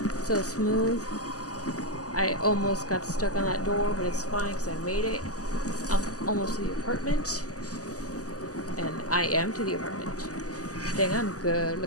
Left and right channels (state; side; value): late; right; 0.67 ms